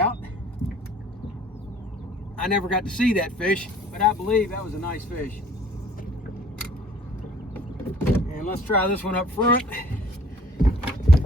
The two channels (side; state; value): both; normal; correlation 0.53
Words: I never got to see that fish, but I believe that was a nice fish. And let's try this one up front.